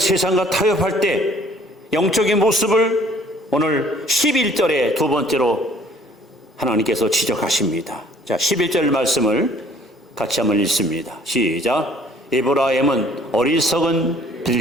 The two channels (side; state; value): both; normal; correlation 0.57